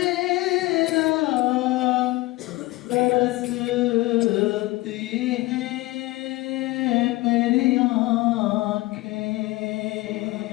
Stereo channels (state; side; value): quieter; right; 20.2 dB